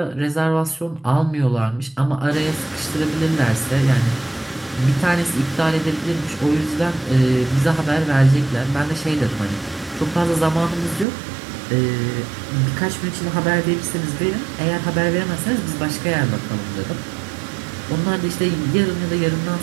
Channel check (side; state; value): left; drops out; at 11.1 s